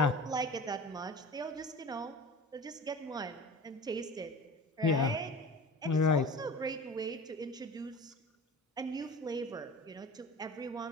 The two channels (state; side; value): normal; both; correlation 0.37